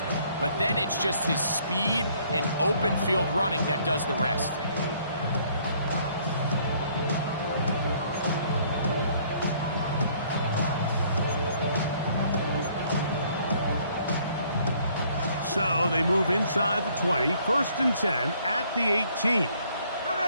But then it's just his speed and open field running that does the rest. So they move inside the 20, 1st and 10 at the 18.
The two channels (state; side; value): inverted; both; correlation -0.62